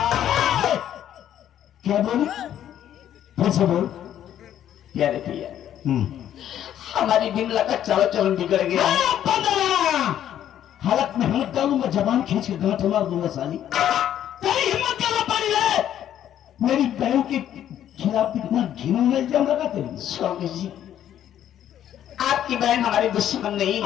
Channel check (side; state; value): right; quieter; 10.8 dB